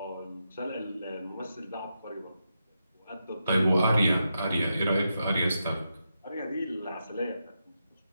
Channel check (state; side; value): inverted; both; correlation -0.86